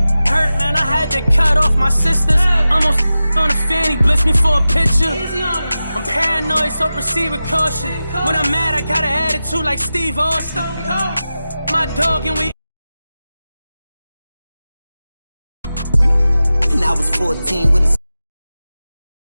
Hurt, man, I had to cut off my sisters. Almost on the fanny, blitz me for a picture. I'm paranoid, so proceed with caution. When I'm mad, I got an attitude like Steve Austin. My dog and we. And I was 14 with a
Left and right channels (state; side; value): inverted; both; correlation -0.94